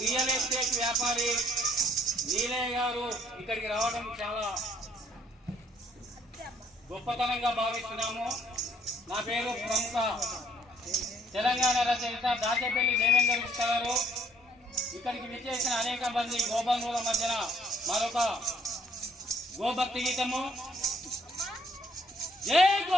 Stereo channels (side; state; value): both; normal; correlation 0.64